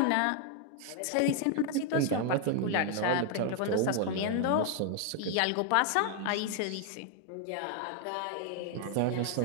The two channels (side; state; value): both; different; correlation 0.00